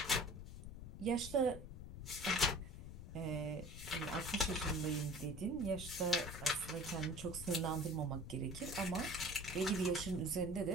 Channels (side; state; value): left; noise; rumble, 10 dB below the sound